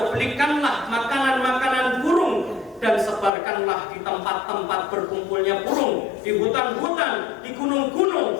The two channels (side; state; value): right; drops out; at 3.3 s